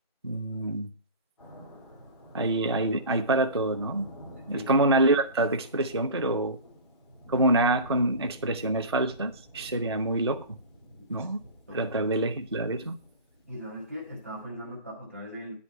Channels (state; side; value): inverted; both; correlation -0.32